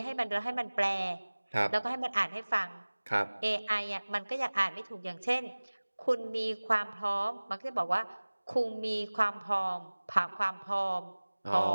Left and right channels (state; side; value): inverted; both; correlation -1.00